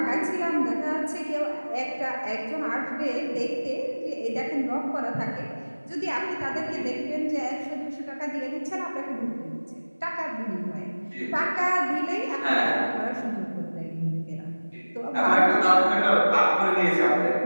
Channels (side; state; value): both; inverted; correlation -1.00